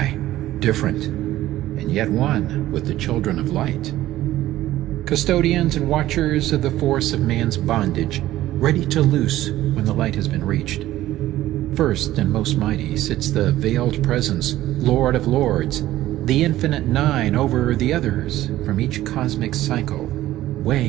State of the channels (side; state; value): left; quieter; 14.8 dB